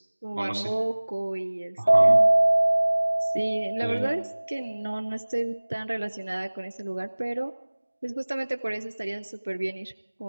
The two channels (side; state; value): both; inverted; correlation -1.00